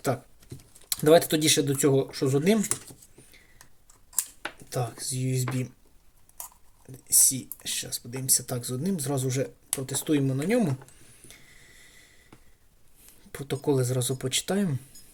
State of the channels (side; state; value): both; identical; correlation 1.00